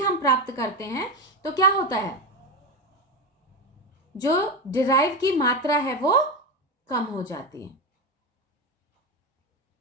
प्राप्त करते हैं तो क्या होता है, जो डिराइव की मात्रा है वो कम हो जाती है।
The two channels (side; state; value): both; normal; correlation 0.16